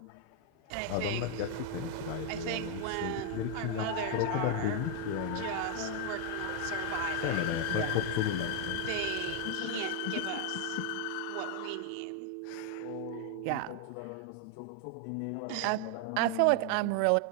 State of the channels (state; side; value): different; both; correlation 0.00